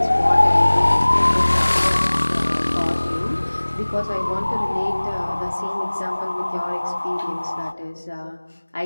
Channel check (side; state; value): both; inverted; correlation -1.00